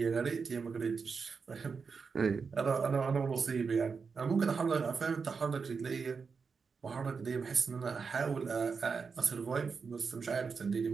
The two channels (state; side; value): quieter; left; 5.3 dB